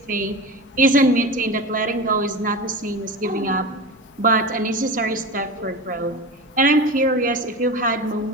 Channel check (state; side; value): normal; both; correlation 0.28